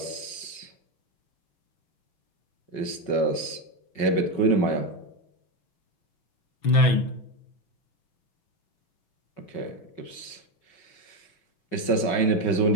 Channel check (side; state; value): right; late; 5.4 ms